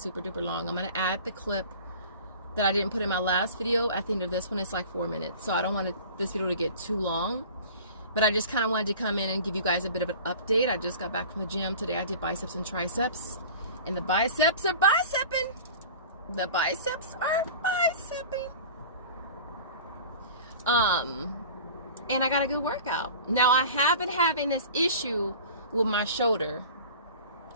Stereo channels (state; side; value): inverted; both; correlation -0.40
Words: duper long. I'm gonna add the clip that I didn't put in my last video at the end of this one. It's like 4 minutes, so I don't want this video to get too long, but I just kind of wanted to come in and give you guys a bit of an update. I just got back from the gym today. I did biceps and triceps, and the biceps are bicepping. The biceps are bicepping. And I got a good workout. Now I have been having this issue with my shoulder,